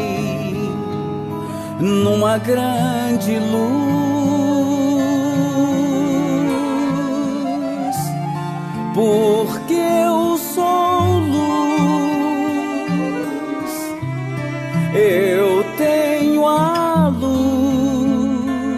numa grande luz, porque eu sou luz, eu tenho a luz,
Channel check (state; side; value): identical; both; correlation 1.00